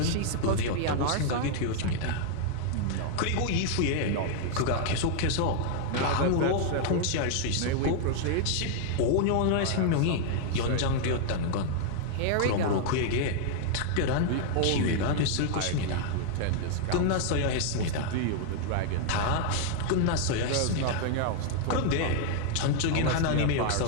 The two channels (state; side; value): different; both; correlation 0.00